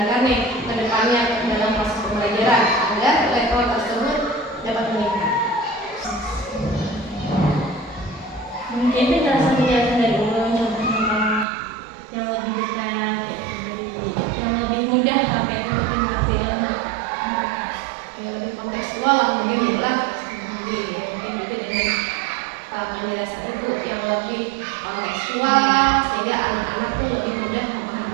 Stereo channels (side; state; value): left; drops out; at 11.5 s